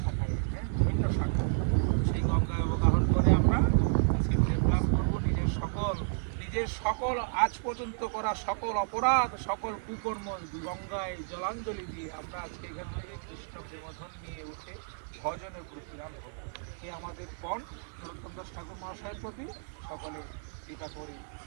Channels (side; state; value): left; silent; 57 dB below the other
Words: বিভিন্ন শাখা, সেই গঙ্গায় অবগাহন করে আমরা আজকে প্রেম লাভ করবো। নিজের সকল আজ পর্যন্ত করা সকল অপরাধ সকল কুকর্ম গঙ্গায় জলাঞ্জলি দিয়ে আমরা আজকে এখান থেকে কৃষ্ণ প্রেমধন নিয়ে উঠে ভজনের প্রতিরাম হব। এ আমাদের পণ নরোত্তম দাস ঠাকুর মহাশয়ের প্রতি সকলে কৃপা করে